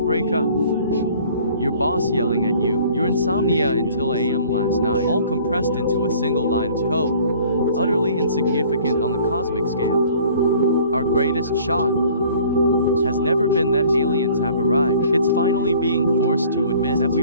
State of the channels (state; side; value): inverted; both; correlation -0.52